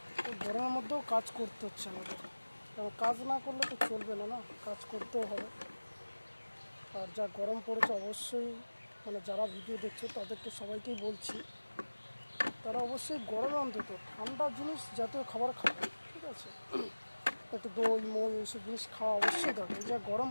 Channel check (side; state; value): both; inverted; correlation -1.00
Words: তো গরমের মধ্যেও কাজ করতে হচ্ছে আমাদের, কারণ কাজ না করলে তো চলবে না, না কাজ করতেও হবে। আর যা গরম পড়েছে অবশ্যই যারা ভিডিও দেখছো তাদেরকে সবাইকেই বলছি, তারা অবশ্যই গরমে অন্তত ঠান্ডা জিনিস জাতীয় খাবার খাবে, ঠিক আছে? একটু দই মই এইসব জিনিস খাওয়া অবশ্যই দরকার। যা গরম